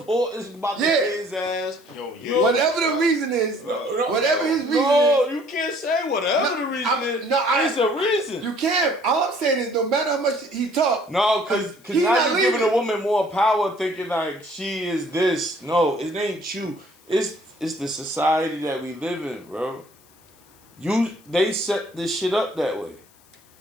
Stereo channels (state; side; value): noise; left; hiss, 29 dB below the sound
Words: is about to pay his ass. Whatever the reason is, whatever his reason is. No, you can't say whatever the reason is. It's a reason. You can't. All I'm saying is no matter how much he talk. No, because now you're giving a woman more power thinking like she is this. No, it ain't you. It's the society that we live in, bro. They set this shit up that way.